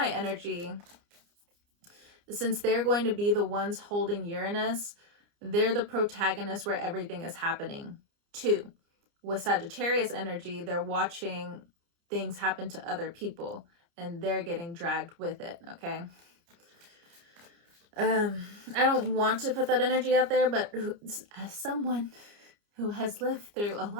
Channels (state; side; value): late; left; 29 ms